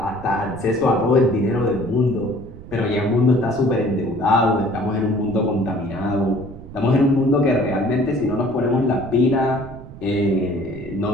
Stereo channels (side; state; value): right; noise; rumble, 15 dB below the sound